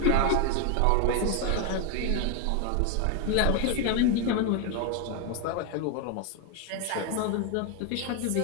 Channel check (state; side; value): different; both; correlation 0.01